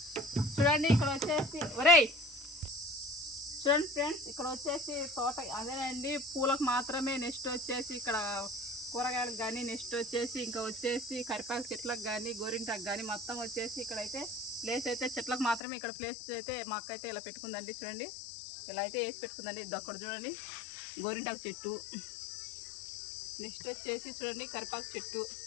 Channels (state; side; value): drops out; right; at 15.6 s